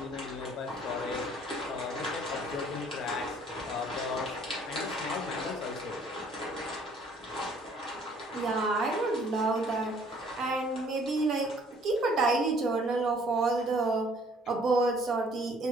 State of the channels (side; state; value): both; normal; correlation 0.59